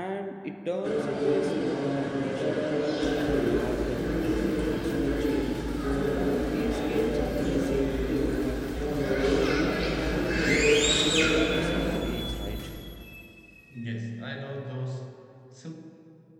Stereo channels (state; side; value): identical; both; correlation 1.00